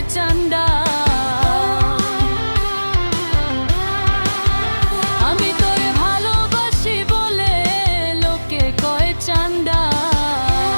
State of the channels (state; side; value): inverted; both; correlation -1.00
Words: চান্দা, আমি তোরে ভালোবাসি বলে লোকে কয় চান্দা।